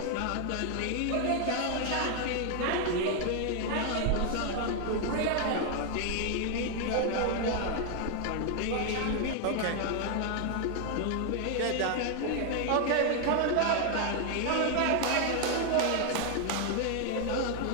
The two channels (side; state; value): both; different; correlation 0.00